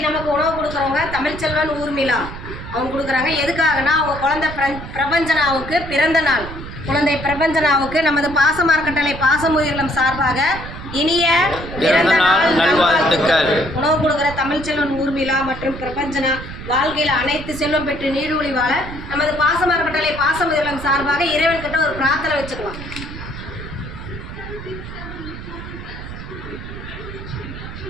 நமக்கு உணவு கொடுக்குறவங்க தமிழ்ச்செல்வன் ஊர்மிளா அவங்க கொடுக்குறாங்க. எதுக்காகனா அவங்க குழந்தை பிரபஞ்சனாவுக்கு பிறந்த நாள். குழந்தை பிரபஞ்சனாவுக்கு நமது பாசமார்க்கட்டளை பாசமுயிரிலம் சார்பாக இனிய பிறந்த நாள் நல்வாழ்த்துக்கள். உணவு கொடுக்குற தமிழ்ச்செல்வன் ஊர்மிளா மற்றும் பிரபஞ்சனா வாழ்க்கையில் அனைத்து செல்வம் பெற்று நீடூழி வாழ நமது பாசமார்க்கட்டளை பாசமுயிரிலம் சார்பாக இறைவன் கிட்ட ஒரு பிரார்த்தனை வச்சுக்கலாம்.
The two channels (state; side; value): noise; right; rumble, 11 dB below the sound